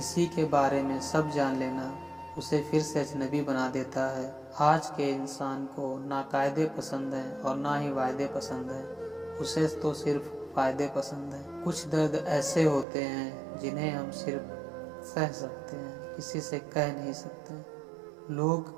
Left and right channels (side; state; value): left; drops out; at 12.9 s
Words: के बारे में सब जान लेना उसे फिर से अजनबी बना देता है। आज के इंसान को ना कायदे पसंद हैं और ना ही वायदे पसंद हैं, उसे तो सिर्फ फायदे पसंद हैं। कुछ दर्द ऐसे होते हैं जिन्हें हम सिर्फ सह सकते हैं, किसी से कह नहीं सकते। लोग